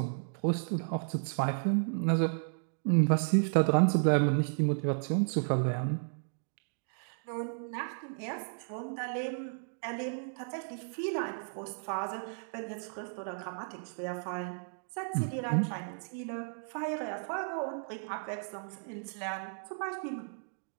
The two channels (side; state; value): left; silent; digital silence